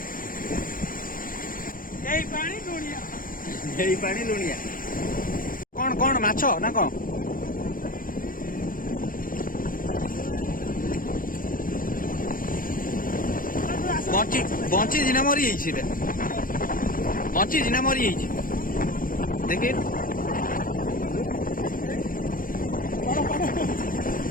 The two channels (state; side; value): late; right; 0.40 ms